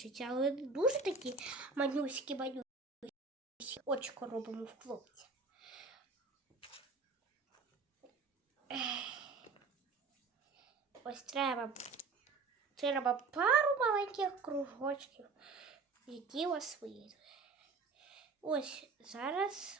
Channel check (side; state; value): left; quieter; 4.4 dB